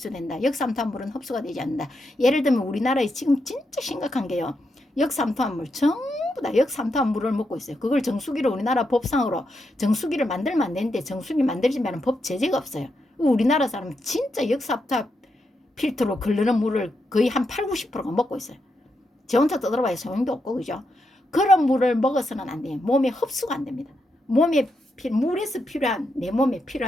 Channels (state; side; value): normal; both; correlation 0.83